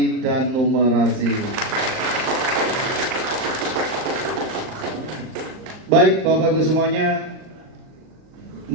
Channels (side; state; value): left; late; 38 ms